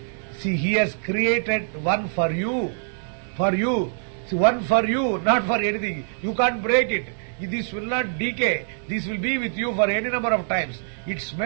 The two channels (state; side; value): silent; left; digital silence